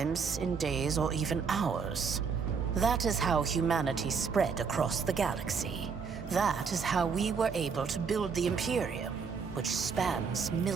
in days or even hours. That is how humanity spread across the galaxy. That is how we were able to build the Imperium, which spans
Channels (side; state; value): left; quieter; 5.8 dB